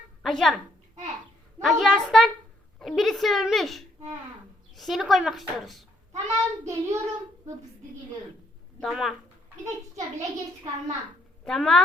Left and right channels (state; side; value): normal; both; correlation 0.71